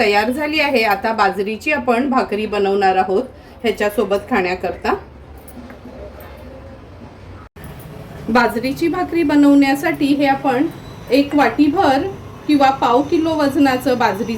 झाली आहे. आता बाजरीची आपण भाकरी बनवणार आहोत ह्याच्यासोबत खाण्याकरता. बाजरीची भाकरी बनवण्यासाठी हे आपण 1 वाटीभर किंवा पाव किलो वजनाचं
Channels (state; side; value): identical; both; correlation 1.00